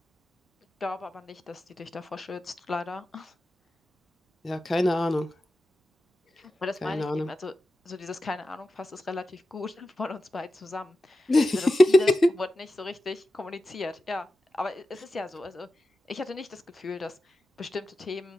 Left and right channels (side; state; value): both; normal; correlation 0.92